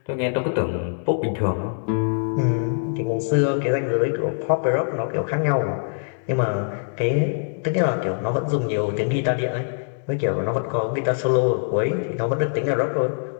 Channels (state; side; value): silent; right; digital silence